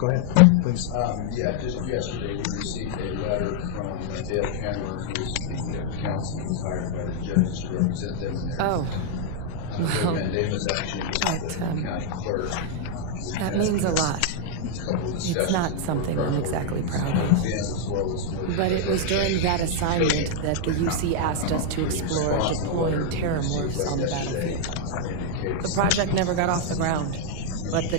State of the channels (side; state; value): both; different; correlation 0.00